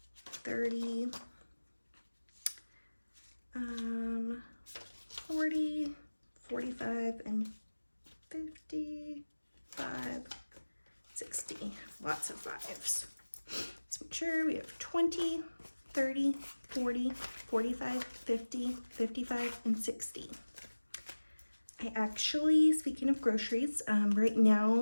30, 40, 45, and 55, 60. Lots of fives. Let's make sure we have 20, 30, 40, 45, 50, 55, and 60. I actually, speaking of groceries, right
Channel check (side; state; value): both; inverted; correlation -1.00